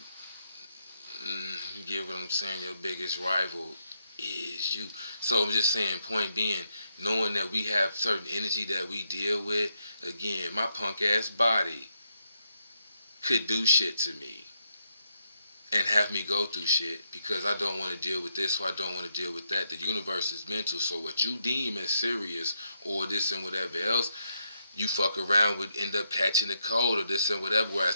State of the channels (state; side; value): inverted; both; correlation -0.80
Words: you get what I'm saying? Your biggest rival is you. So I'm just saying, point being, knowing that we have certain energy that we deal with, again, my punk ass body could do shit to me and have me go through shit because I don't want to deal with this or I don't want to deal with that. The universe is mental, so what you deem as serious or this and whatever else, you fuck around with, end up catching a cold or this and whatever,